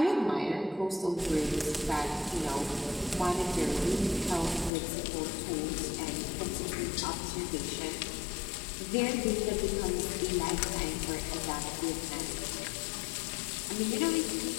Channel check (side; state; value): right; drops out; at 4.7 s